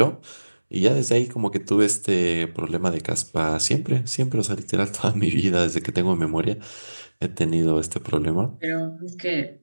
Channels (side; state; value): both; inverted; correlation -1.00